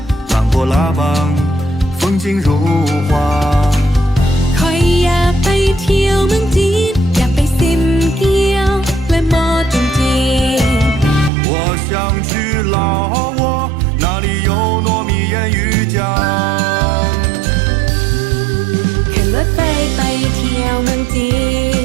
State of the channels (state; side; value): drops out; left; at 11.3 s